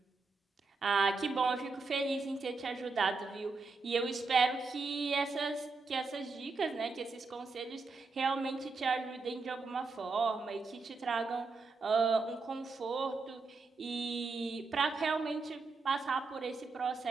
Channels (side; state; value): left; quieter; 4.1 dB